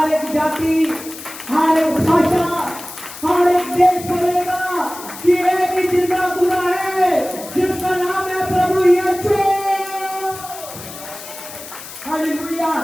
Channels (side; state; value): left; noise; hiss, 13 dB below the sound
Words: एक जाति, हर एक भाषा, हर एक देश बोलेगा कि एक ही जिंदा खुदा है जिसका नाम है प्रभु यीशु। हालेलुया।